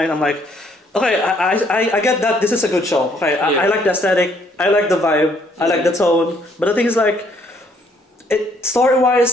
I'm like, okay, I get that this is a good show. Okay, I like the aesthetic, I like the vibe, I like the tone. But the thing is like, story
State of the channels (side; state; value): both; normal; correlation 0.66